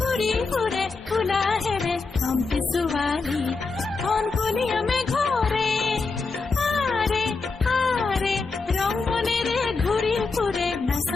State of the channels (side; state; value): right; quieter; 4.2 dB